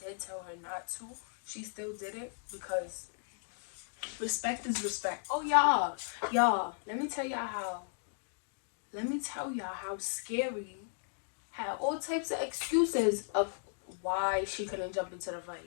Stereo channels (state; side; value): silent; right; digital silence